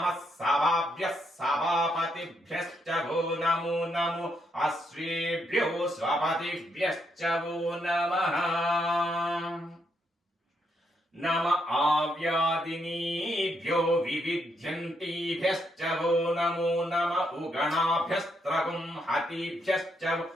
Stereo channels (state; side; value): normal; both; correlation 0.77